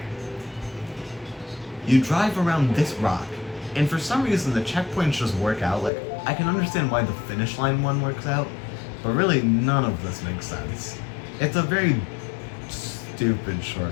You drive around this rock, and for some reason the checkpoints just work out. Like, I can understand why the finish line one works out, but really none of this makes sense. It's a very stupid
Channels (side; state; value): right; drops out; at 5.9 s